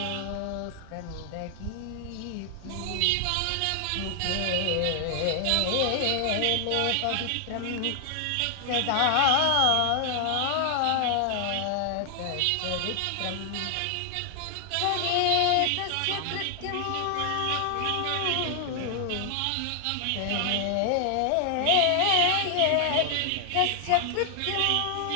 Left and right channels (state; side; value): different; both; correlation 0.00